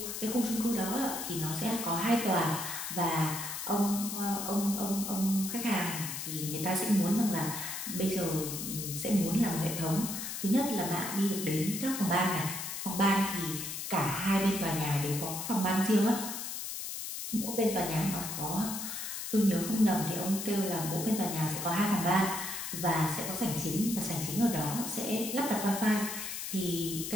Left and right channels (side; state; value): left; noise; hiss, 5 dB below the sound